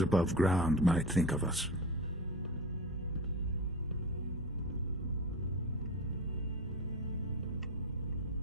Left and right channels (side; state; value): both; normal; correlation 0.27